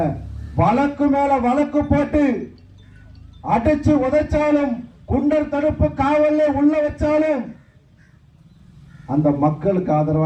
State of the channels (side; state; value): both; identical; correlation 1.00